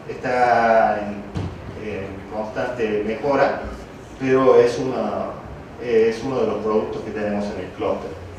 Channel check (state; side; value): identical; both; correlation 1.00